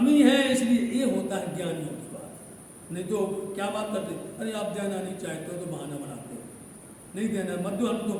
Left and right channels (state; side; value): identical; both; correlation 1.00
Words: इसलिए ये होता है ज्ञानियों की बात। नहीं तो क्या बात करते, अरे आप देना नहीं चाहते हो तो बहाना बनाते हो, नहीं देना मत दो, हम